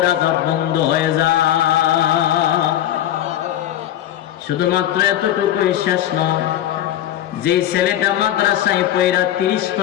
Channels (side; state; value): right; quieter; 12.0 dB